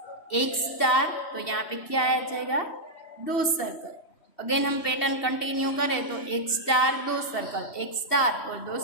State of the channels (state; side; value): late; right; 3.1 ms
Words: एक स्टार, तो यहाँ पे क्या आ जाएगा, 2 सर्कल. अगेन हम पैटर्न कंटिन्यू करें तो एक स्टार 2 सर्कल, एक स्टार और 2